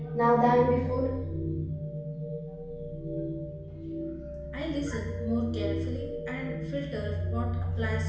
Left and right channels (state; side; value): identical; both; correlation 1.00